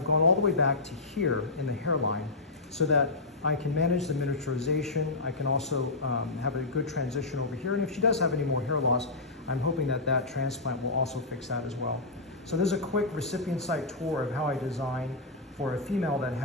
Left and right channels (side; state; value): right; quieter; 3.3 dB